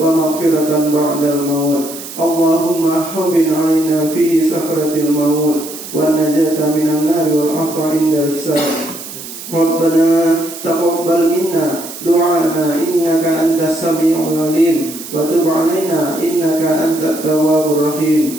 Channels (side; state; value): right; noise; hiss, 12 dB below the sound